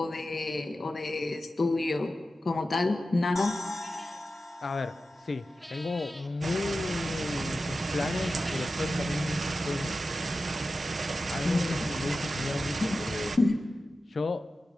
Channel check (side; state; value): both; normal; correlation 0.93